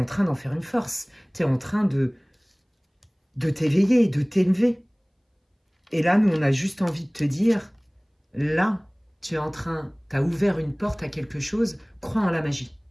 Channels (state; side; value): identical; both; correlation 1.00